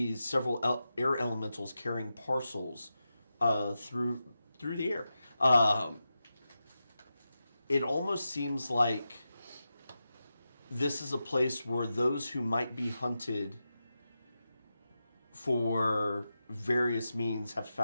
several air elementals carrying parcels through the air. It almost seems like this is a place where those who might be hunted for various means have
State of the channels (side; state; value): both; inverted; correlation -0.90